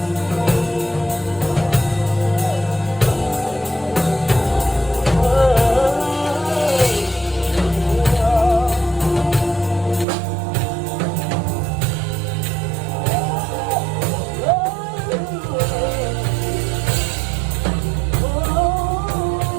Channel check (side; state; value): left; drops out; at 10.1 s